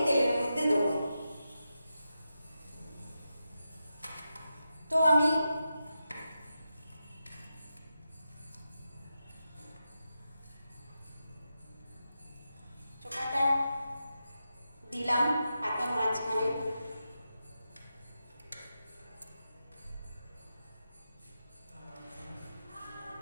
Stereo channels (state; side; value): inverted; both; correlation -0.89